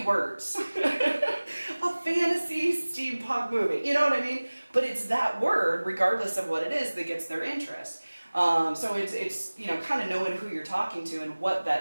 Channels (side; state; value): both; inverted; correlation -1.00